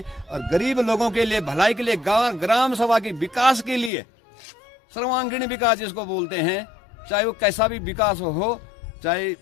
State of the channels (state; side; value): drops out; right; at 3.9 s